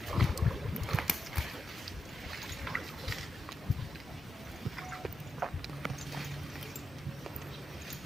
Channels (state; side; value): normal; both; correlation 0.87